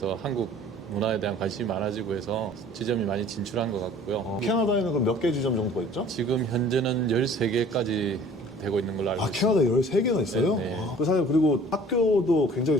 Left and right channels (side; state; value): both; normal; correlation 0.49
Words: 한국 문화에 대한 관심이 많아지고 해서 지점이 많이 진출한 것 같고요. 캐나다에는 그럼 몇 개 지점 정도가 있죠? 지금 현재는 13개까지 되고 있는 걸로 알고 있습니다. 캐나다에 13개나 있어요? 네, 네. 사장님, 그리고 학교도 굉장히